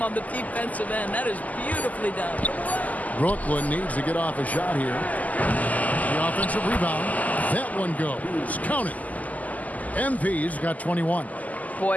on the defensive end. That is beautifully done. Brooklyn needs to get off a shot here. The offensive rebound. That one goes. Count it. MP's got 21.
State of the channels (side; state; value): right; late; 0.077 ms